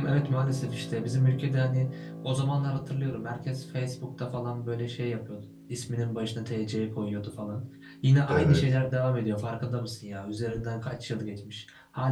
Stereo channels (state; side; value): identical; both; correlation 1.00